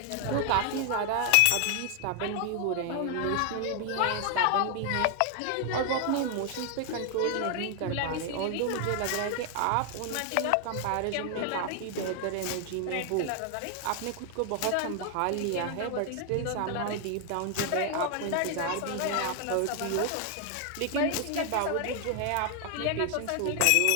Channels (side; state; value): both; different; correlation 0.00